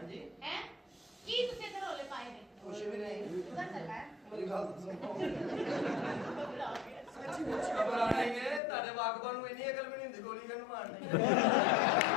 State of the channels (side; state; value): right; drops out; at 8.6 s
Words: ਹੈ ਕੀ ਤੁਸੀਂ ਇੱਧਰ ਰੋਲੇ ਪਾਏ ਨੇ? ਕੁਛ ਵੀ ਨਹੀਂ। ਉਧਰ ਚੱਲਣਾ ਹੈ। ਮੇਰੀ ਗੱਲ ਸੁਣੋ। ਘਬਰਾ ਗਿਆ। ਸੱਚੀ ਮੁੱਚ ਘਬਰਾਣੇ ਨੇ ਤੁਹਾਡੇ ਵਾਕਬਾਂ ਨੂੰ ਇੰਨੀ ਅਕਲ ਵੀ ਨਹੀਂ ਹੁੰਦੀ ਗੋਲੀ ਕਿਹਨੂੰ ਮਾਰਨੀ।